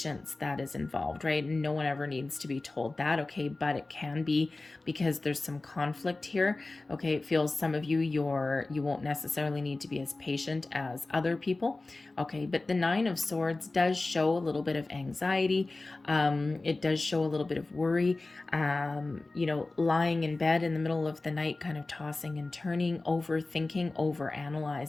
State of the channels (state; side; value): quieter; right; 3.2 dB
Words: that is involved, right? No one ever needs to be told that, okay? But it can be because there's some conflict here, okay? It feels some of you, you won't necessarily need to be as patient as other people, okay? But the Nine of Swords does show a little bit of anxiety. It does show a little bit of worry, lying in bed in the middle of the night, kind of tossing and turning, overthinking,